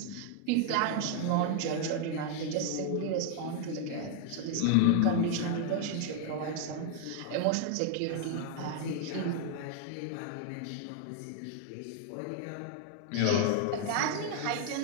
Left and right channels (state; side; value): different; both; correlation 0.00